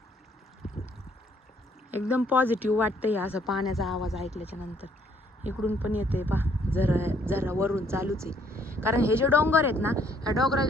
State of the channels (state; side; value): normal; both; correlation 0.66